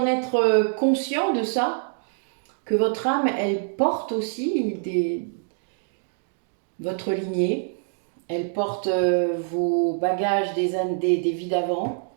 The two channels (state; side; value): silent; left; digital silence